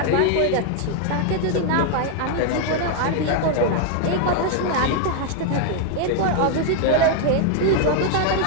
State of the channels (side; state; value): both; different; correlation 0.00